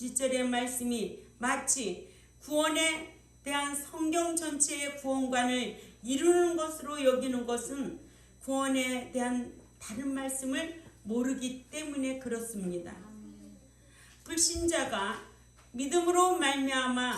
말씀이 마치 구원에 대한 성경 전체의 구원관을 이루는 것으로 여기는 것은 구원에 대한 다른 말씀을 모르기 때문에 그렇습니다. 불신자가 믿음으로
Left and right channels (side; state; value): both; identical; correlation 1.00